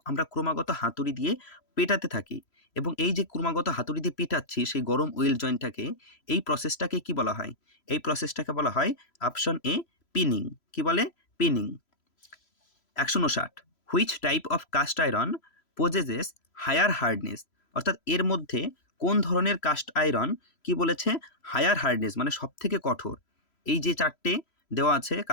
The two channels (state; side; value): late; right; 3.0 ms